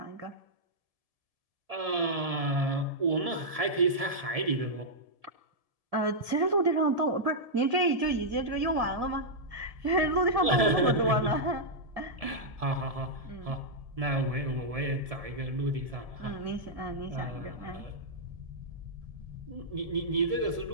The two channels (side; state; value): left; late; 1.7 ms